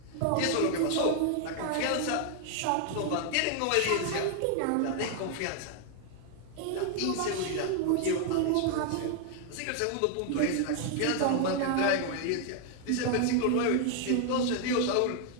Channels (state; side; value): different; both; correlation 0.00